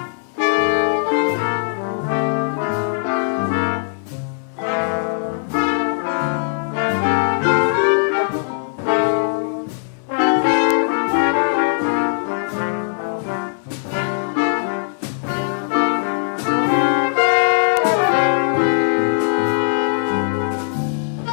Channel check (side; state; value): right; silent; digital silence